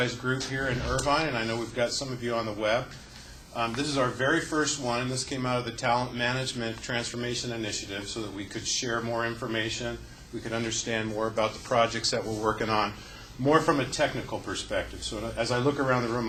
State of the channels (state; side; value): identical; both; correlation 1.00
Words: group here in Irvine, and I know we've got some of you on the web. This is our very first one, and this came out of the Talent Management Transformation Initiative so that we could share more information, we could understand more about the projects that we're working on, more from a technical perspective. So as I look around the room,